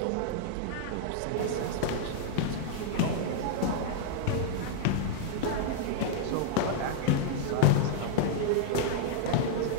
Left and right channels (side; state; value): both; different; correlation -0.01